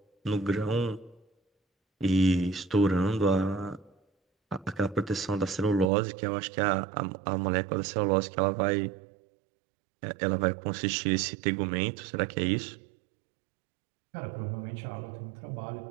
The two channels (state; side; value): drops out; left; at 5.9 s